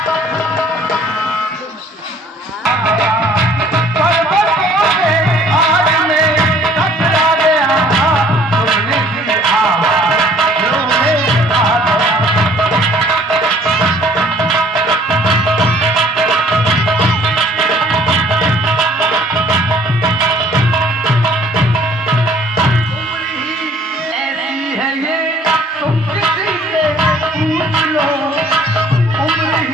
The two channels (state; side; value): normal; both; correlation 0.57